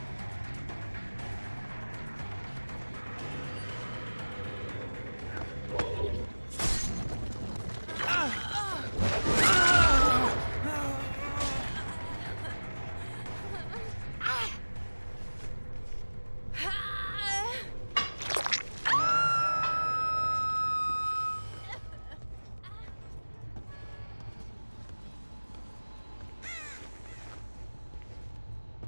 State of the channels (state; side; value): inverted; both; correlation -1.00